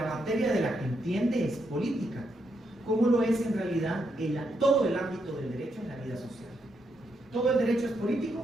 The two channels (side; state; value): both; normal; correlation 0.80